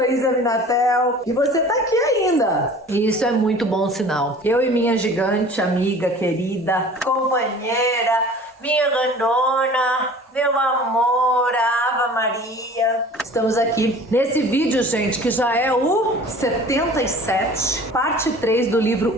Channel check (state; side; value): normal; both; correlation 0.45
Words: Isa Minatel e você tá aqui ainda. E isso é muito bom sinal. Eu e minha gigante amiga querida, companheira, minha grandona, meu amor, a Ava Maria. Estamos aqui nesse vídeo, gente, que já é o 77, parte 3 do